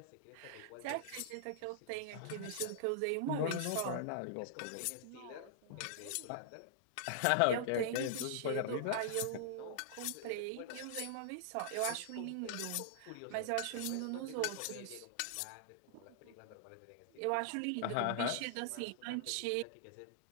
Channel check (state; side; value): different; both; correlation -0.01